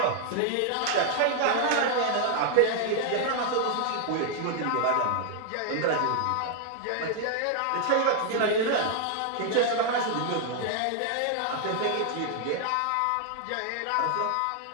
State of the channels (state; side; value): different; both; correlation 0.00